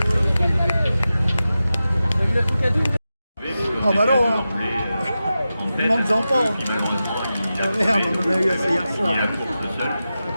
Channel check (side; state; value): both; inverted; correlation -0.92